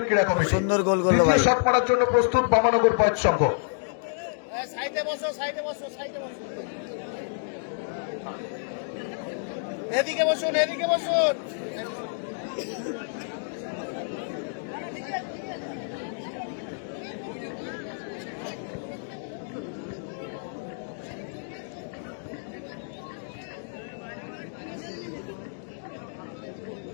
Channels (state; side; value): silent; right; digital silence